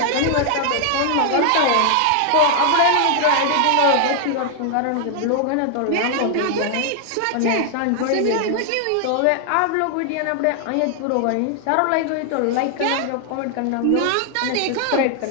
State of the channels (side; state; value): both; different; correlation 0.00